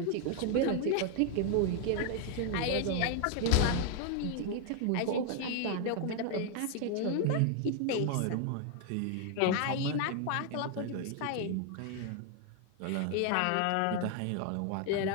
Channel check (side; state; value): both; different; correlation 0.00